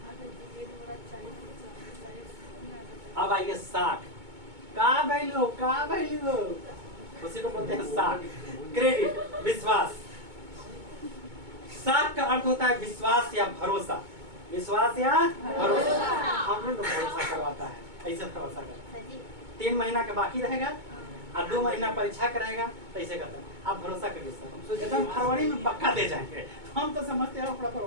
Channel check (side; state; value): left; late; 2.2 ms